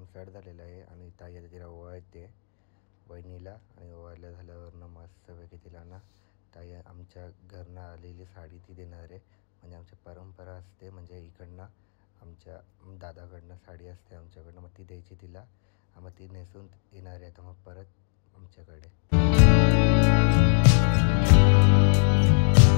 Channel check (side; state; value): right; silent; digital silence